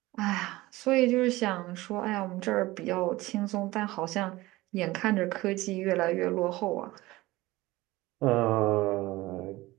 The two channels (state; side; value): quieter; left; 19.1 dB